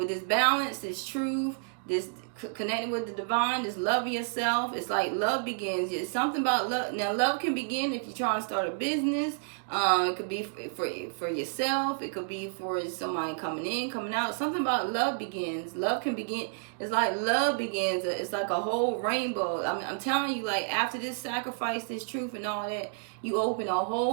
this balance, this truth, this connecting with the divine, this love of yourself. It's like love begins. It's something about love. Now, love can begin if you're trying to start a business. It could be for yourself. It could be for somebody coming in, coming out. Something about love begins. Love can begin. It's like love begins. It's like a whole rainbow. I'm telling you, like after this sacrifice, this truth and all that, you open a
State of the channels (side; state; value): left; silent; digital silence